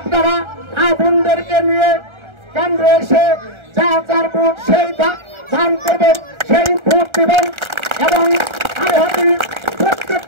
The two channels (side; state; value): left; late; 1.4 ms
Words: বোনদেরকে নিয়ে কেন্দ্রে এসে যার ভোট সেই দান করবেন, সেই ভোট দেবেন। এবং